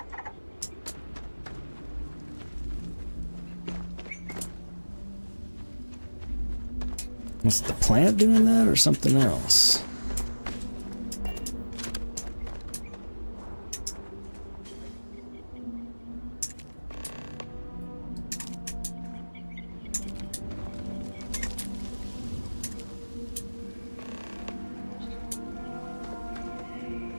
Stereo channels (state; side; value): inverted; both; correlation -1.00